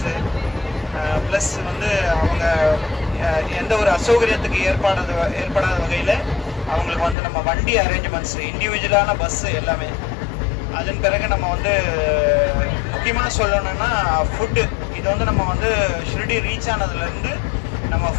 ப்ளஸ் அவங்க எந்த ஒரு அசௌகரியத்துக்கு ஏற்படாத வகையில் அவங்களுக்கு நம்ம வண்டி அரேஞ்ச்மெண்ட்ஸு, இண்டிவிஜுவலான பஸ்ஸு எல்லாமே. அதன் பிறகு நம்ம முக்கியமாக சொல்லணும்னா ஃபுட்டு. இது நம்ம ஷிரடி ரீச் ஆனதுலேருந்து நம்ம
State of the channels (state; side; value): drops out; right; at 7.2 s